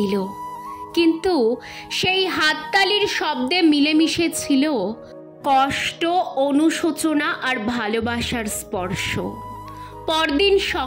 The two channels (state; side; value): identical; both; correlation 1.00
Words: কিন্তু সেই হাততালির শব্দে মিলেমিশে ছিল কষ্ট, অনুশোচনা আর ভালোবাসার স্পর্শ। পরদিন